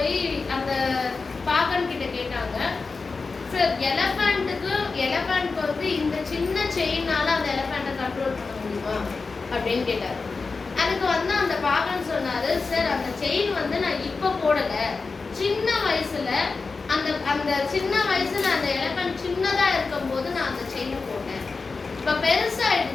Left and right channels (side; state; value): right; quieter; 4.3 dB